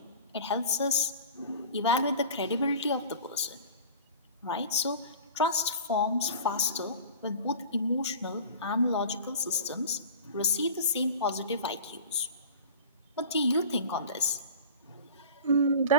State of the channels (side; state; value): both; inverted; correlation -0.38